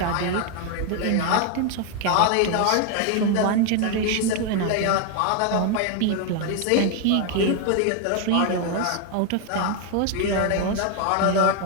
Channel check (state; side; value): different; both; correlation 0.01